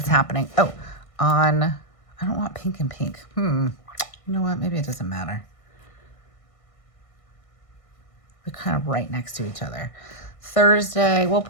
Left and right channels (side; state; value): right; late; 1.6 ms